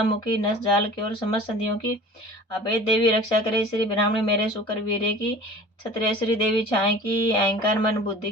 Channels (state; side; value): normal; both; correlation 0.42